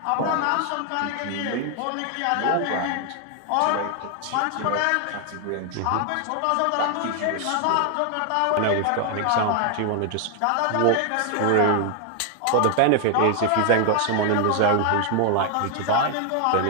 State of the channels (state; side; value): different; both; correlation 0.00